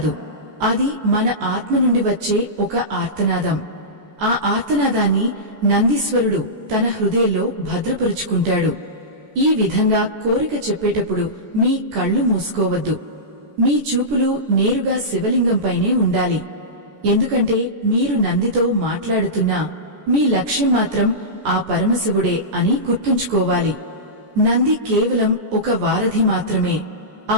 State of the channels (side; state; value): left; late; 14 ms